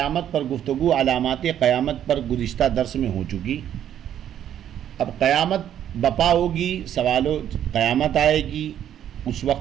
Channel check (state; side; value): quieter; left; 10.4 dB